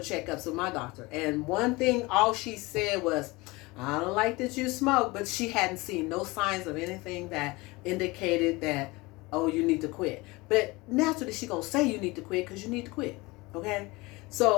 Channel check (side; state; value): right; quieter; 23.1 dB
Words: with my doctor. And one thing, all she said was, I don't like that you smoke. But she hadn't seen no signs of anything that indicated that, oh, you need to quit. But naturally, she going to say you need to quit because you need to quit. Okay?